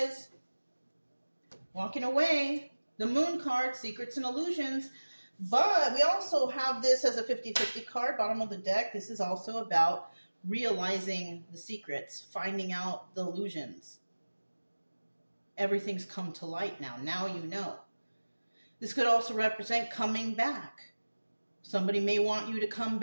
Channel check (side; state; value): both; inverted; correlation -1.00